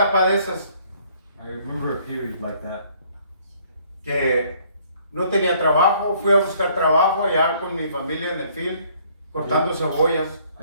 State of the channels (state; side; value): inverted; both; correlation -0.62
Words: de esas I remember a period like that. que no tenía trabajo, fui a buscar trabajo allá con mi familia en el field, cortando cebollas. I